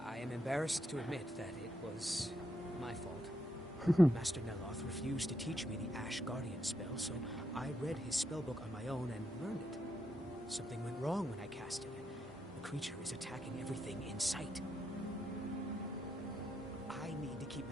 I am embarrassed to admit that it was my fault. Master Neloth refused to teach me the Ash Guardian spell, so I read his spellbook on my own and learned it. Something went wrong when I cast it. The creature is attacking everything in sight. I need to keep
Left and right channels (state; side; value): normal; both; correlation 0.80